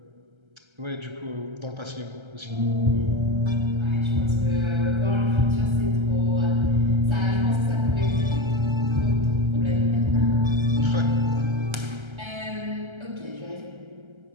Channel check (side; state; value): left; late; 1.3 ms